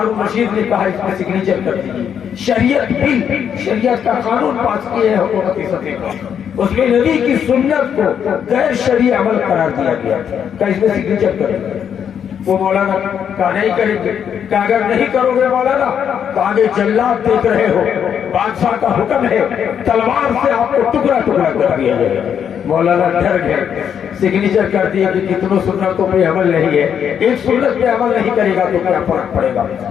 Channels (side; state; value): right; quieter; 8.3 dB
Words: رشید نے کہا اس میں سگنیچر کر دیجیے. شریعت بل, شریعت کا قانون پاس کیے ہیں حکومتی سطح پر, اس میں نبی کی سنت کو غیر شرعی عمل قرار دیا گیا کہ اس میں سگنیچر کر دیجیے. وہ مولانا کہا نہیں کریں گے. کہ اگر نہیں کرو گے مولانا تو آگے جلات دیکھ رہے ہو, بادشاہ کا حکم ہے تلوار سے آپ کو ٹکڑا ٹکڑا کر دیا جائے گا. مولانا ڈر گئے, سگنیچر کر دیے کہ کتنوں سنتوں پہ عمل نہیں ہے, ایک سنت پہ عمل نہیں کرے گا تو کیا فرق پڑے گا,